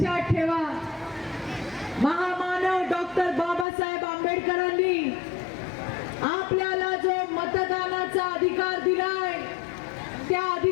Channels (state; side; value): drops out; right; at 3.7 s